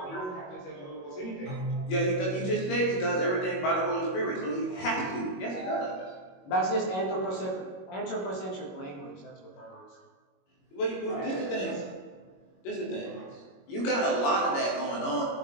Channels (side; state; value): right; late; 21 ms